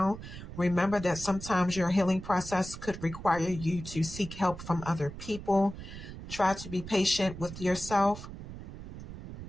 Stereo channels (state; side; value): noise; right; rumble, 11 dB below the sound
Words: Remember that sometimes your healing process could require you to seek help from other people. Try to be patient with yourself.